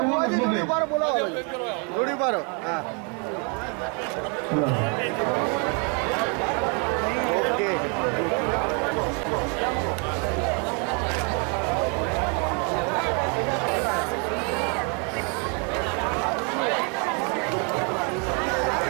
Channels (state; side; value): quieter; left; 36.3 dB